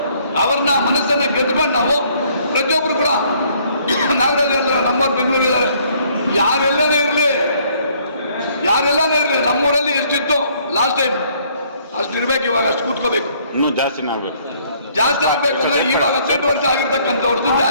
ಅವ್ರನ್ನ ಮನಸ್ಸನ್ನು ಗೆದ್ಕೊಂಡು ನಾವು ಪ್ರತಿಯೊಬ್ಬರು ಕೂಡ ನಾಗರಾಜ್ ಅಂದ್ರೆ ನಮ್ಮವ್ರು ಬೆಂಗಳೂರಿದ್ದಾರೆ, ಯಾರೆಲ್ಲನೇ ಇರಲಿ ನಮ್ಮೂರಲ್ಲಿ ಎಷ್ಟಿತ್ತು ಲಾಸ್ಟ್ ಟೈಮ್ ಅಷ್ಟು ಇರ್ಬೇಕು. ಇವಾಗ ಅಷ್ಟು ಕೂತ್ಕೋಬೇಕು, ಇನ್ನೂ ಜಾಸ್ತಿ ಆಗ್ಬೇಕು ಅಂದ್ರೆ ಇವಾಗ 18 ವರ್ಷ ಆಗಿರ್ತಕ್ಕಂಥವ್ರದ್ದು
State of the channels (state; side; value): inverted; both; correlation -0.63